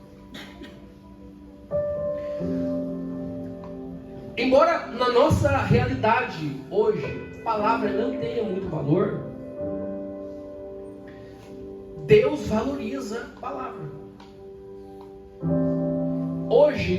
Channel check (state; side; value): identical; both; correlation 1.00